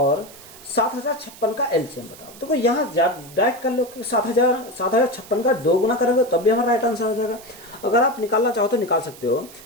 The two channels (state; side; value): noise; right; hiss, 19 dB below the sound